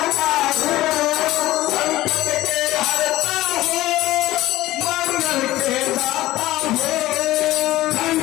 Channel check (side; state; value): right; quieter; 16.3 dB